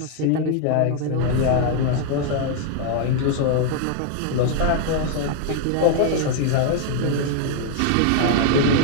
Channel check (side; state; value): both; different; correlation 0.00